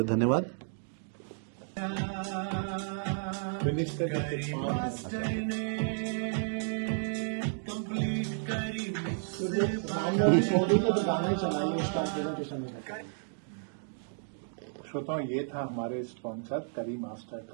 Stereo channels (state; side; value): silent; left; digital silence